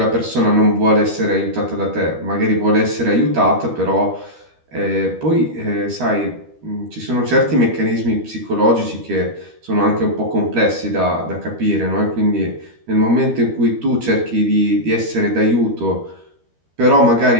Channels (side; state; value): left; late; 12 ms